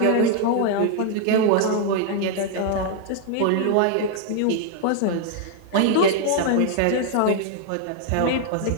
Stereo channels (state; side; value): different; both; correlation 0.00